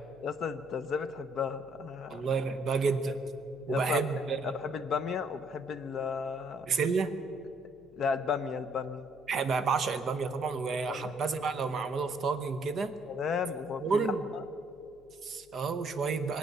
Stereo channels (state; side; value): noise; left; hum, 28 dB below the sound